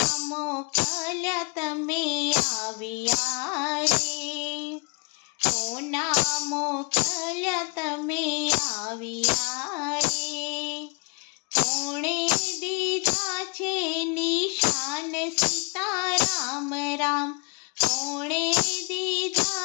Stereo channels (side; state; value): right; quieter; 35.3 dB